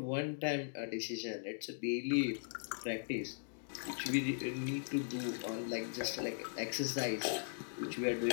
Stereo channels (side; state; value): right; silent; digital silence